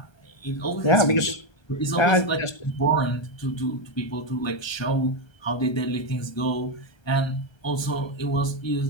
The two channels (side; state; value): right; late; 1.3 ms